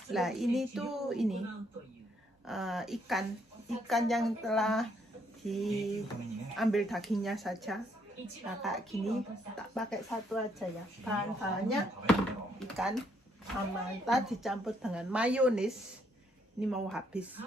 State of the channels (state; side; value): normal; both; correlation 0.71